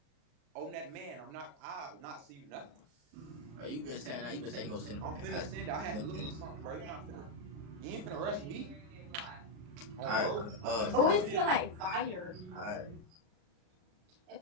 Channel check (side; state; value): left; late; 40 ms